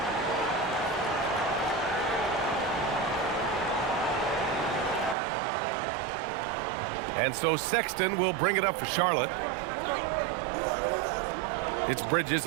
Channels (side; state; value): left; drops out; at 5.2 s